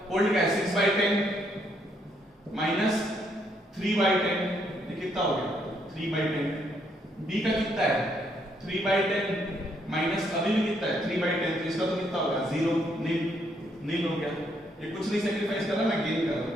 ओल्ड का है 6/10 माइनस 3/10, ये कितना हो गया 3/10। B का कितना है 3/10 माइनस अभी भी कितना है 3/10, तो इसका तो कितना होगा 0 नील हो गया। ये कुछ नहीं सेक्रीफाइस कर रहा ना, गेन कर रहा।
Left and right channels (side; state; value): both; normal; correlation 0.73